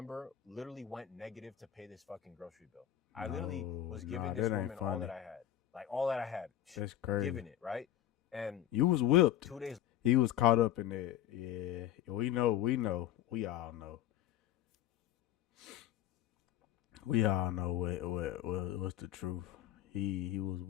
literally went negative to pay this fucking grocery bill. I literally was giving this that ain't woman all funny. that I had. Like, all that I had. That's crazy. Giving it, right? And You was whipped. 2 days. He was caught up in that. Yeah, we know. We all know. We all know what's the truth. He was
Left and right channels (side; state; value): right; quieter; 11.5 dB